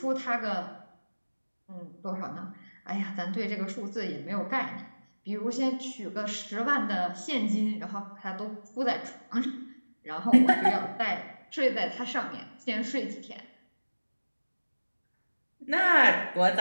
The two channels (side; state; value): both; inverted; correlation -1.00